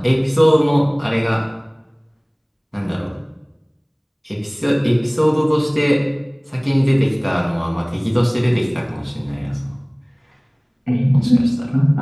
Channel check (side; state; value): both; identical; correlation 1.00